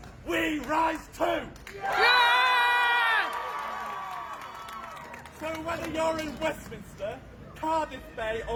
we rise too! So whether you're in Westminster, Cardiff Bay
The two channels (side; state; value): both; identical; correlation 1.00